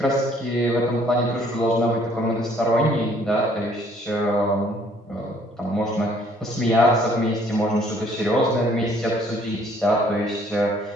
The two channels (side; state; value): both; normal; correlation 0.61